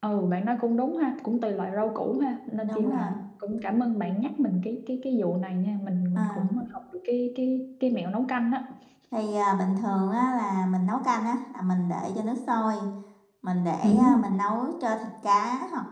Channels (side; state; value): both; identical; correlation 1.00